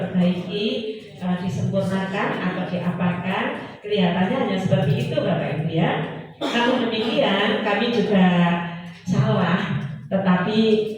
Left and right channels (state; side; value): identical; both; correlation 1.00